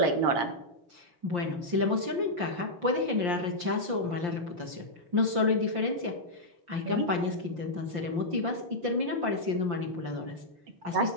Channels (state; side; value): late; left; 5.7 ms